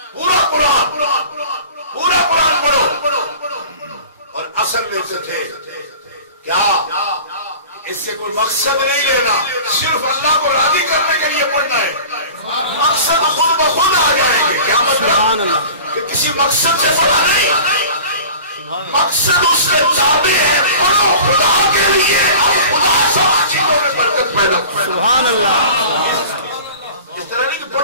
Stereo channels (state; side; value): inverted; both; correlation -0.40